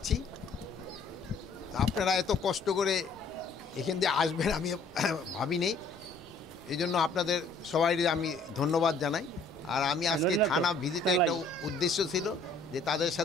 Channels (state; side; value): quieter; right; 3.6 dB